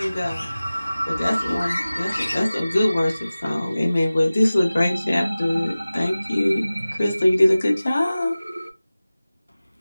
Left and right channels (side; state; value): both; inverted; correlation -0.97